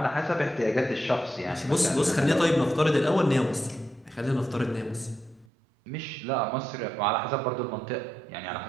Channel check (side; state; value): left; drops out; at 5.5 s